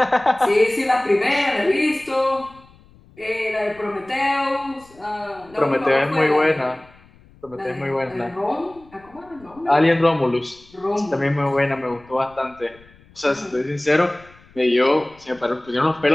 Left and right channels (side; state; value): left; noise; rumble, 27 dB below the sound